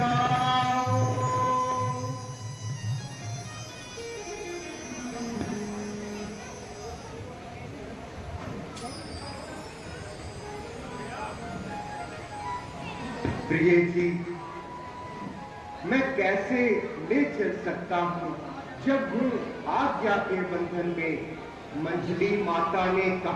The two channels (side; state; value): both; identical; correlation 1.00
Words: प्रिय जी, मैं कैसे ले चल सकता हूँ जब हूँ आज्ञा के बंधन में। मंजली माता ने